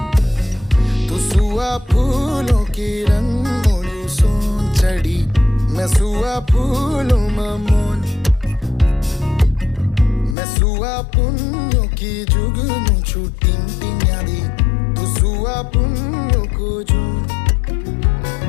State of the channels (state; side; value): drops out; right; at 10.4 s